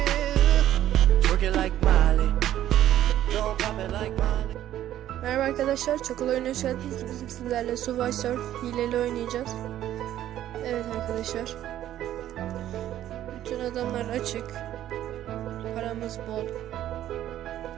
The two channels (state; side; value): quieter; left; 12.3 dB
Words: twerking like Miley. Don't pop it like Miley. Merhaba arkadaşlar, çok oyuna hoş geldiniz. Bizim sizlerle Subway Surf hileli oynayacağız. Evet arkadaşlar, bütün adamlar açık, paramız bol.